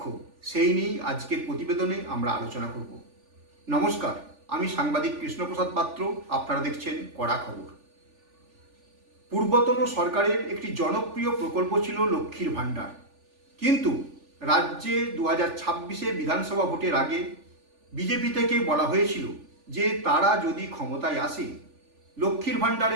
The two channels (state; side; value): late; left; 3.4 ms